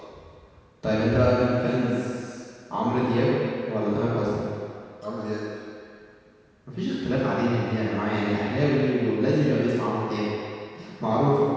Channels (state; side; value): identical; both; correlation 1.00